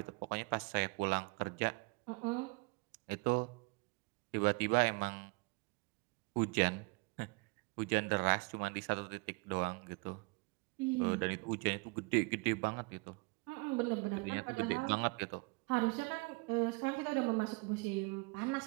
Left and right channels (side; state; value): left; quieter; 29.1 dB